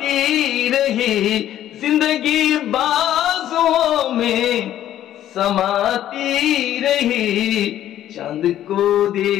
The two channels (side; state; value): right; quieter; 12.0 dB